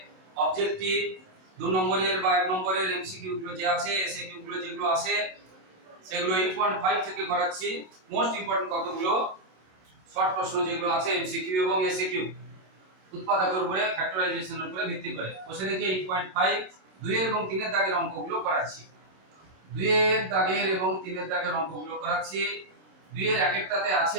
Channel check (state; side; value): late; left; 27 ms